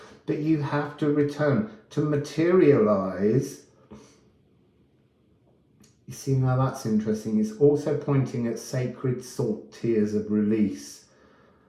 that you have to return to materialize. You see, now that's interesting. It's also pointing at sacred salt tears of release.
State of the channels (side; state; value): both; identical; correlation 1.00